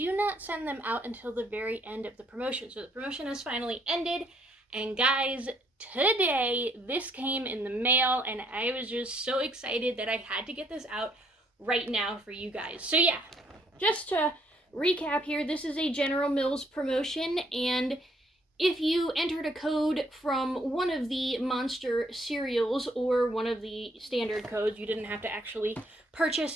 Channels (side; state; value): both; normal; correlation 0.68